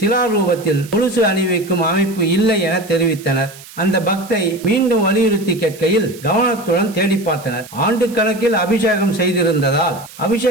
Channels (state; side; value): noise; right; hiss, 19 dB below the sound